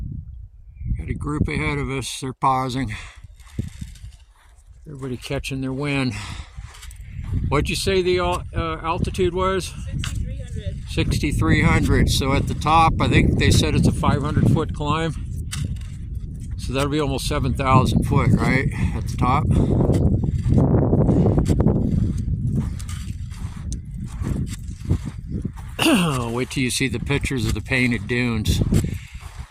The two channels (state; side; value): identical; both; correlation 1.00